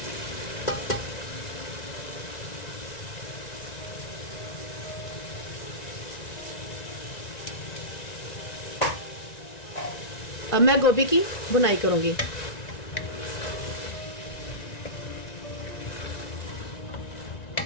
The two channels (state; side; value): late; right; 1.9 ms